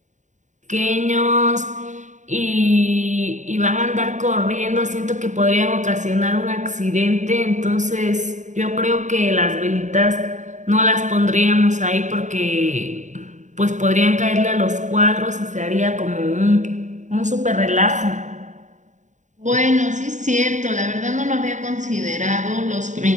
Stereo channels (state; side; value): late; left; 0.35 ms